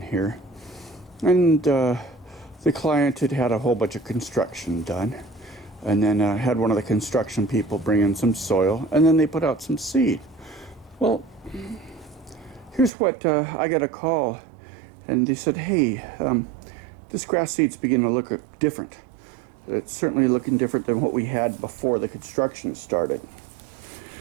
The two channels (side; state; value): left; drops out; at 12.9 s